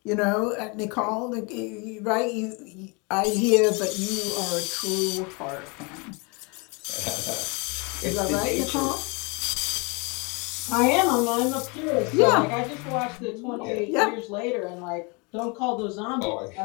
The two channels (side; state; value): right; quieter; 30.4 dB